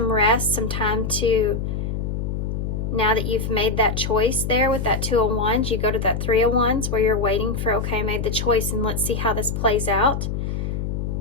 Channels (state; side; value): noise; left; hum, 2 dB below the sound